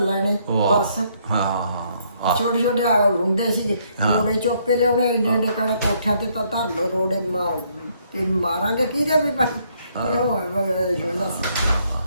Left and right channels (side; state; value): both; inverted; correlation -0.69